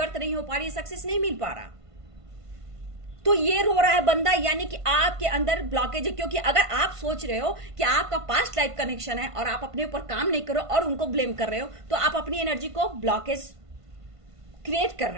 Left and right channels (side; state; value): left; late; 1.5 ms